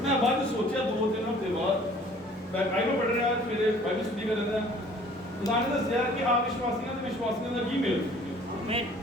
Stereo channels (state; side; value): normal; both; correlation 0.53